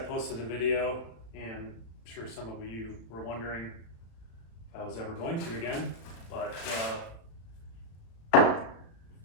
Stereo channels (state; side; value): late; right; 36 ms